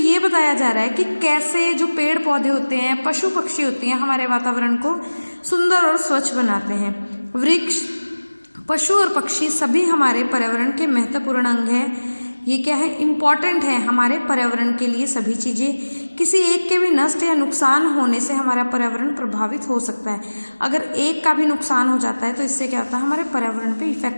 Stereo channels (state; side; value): inverted; both; correlation -1.00